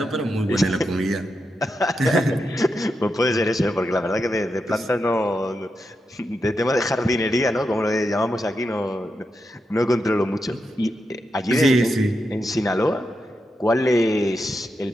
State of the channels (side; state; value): both; normal; correlation 0.86